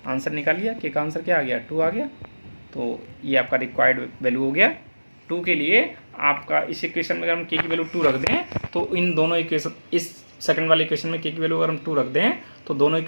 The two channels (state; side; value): inverted; both; correlation -1.00